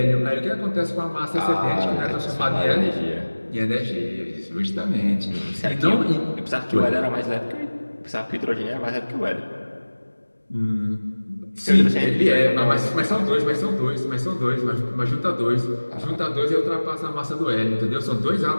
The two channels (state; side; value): inverted; both; correlation -1.00